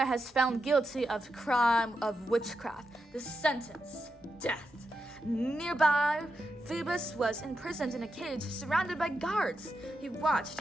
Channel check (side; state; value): both; normal; correlation 0.86